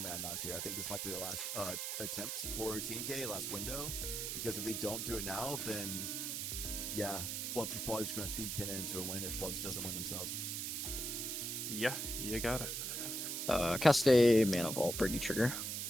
Adnos here. I think this might be the last attempt for TNK, last window, because if they don't do it now, then yeah, Flubs is probably just going to feed Kennen into a win if Flubs doesn't win themselves. Yeah, you got it. Cast a Mana Vault, Briggy trigger.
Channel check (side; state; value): right; noise; hiss, 2 dB below the sound